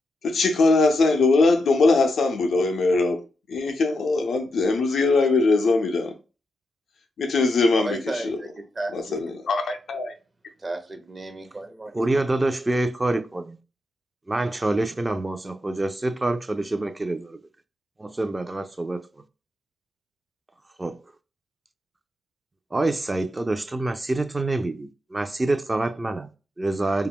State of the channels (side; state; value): both; normal; correlation 0.85